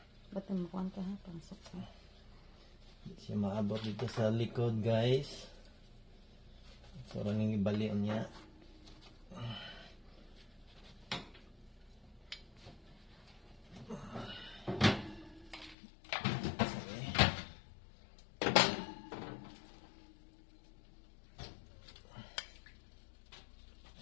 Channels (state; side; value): drops out; right; at 15.8 s